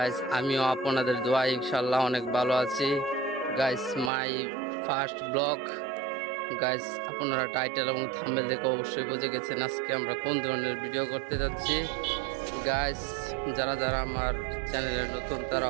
আমিও আপনাদের দোয়া ইনশাল্লাহ অনেক ভালো আছি guys. My first blog guys, আপনারা টাইটেল এবং থাম্বনেল দেখে অবশ্যই বুঝে গেছেন আজকে আমরা কোন ধরনের ভিডিও করতে যাচ্ছি গাইজ। যারা যারা আমার চ্যানেলে নতুন তারা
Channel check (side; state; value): left; drops out; at 4.1 s